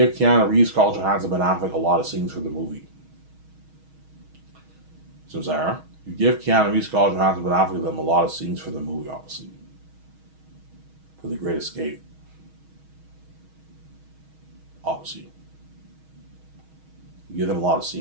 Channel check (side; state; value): left; late; 6.3 ms